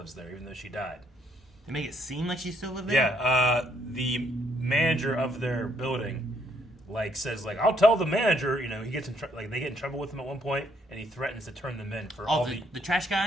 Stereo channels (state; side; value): normal; both; correlation 0.70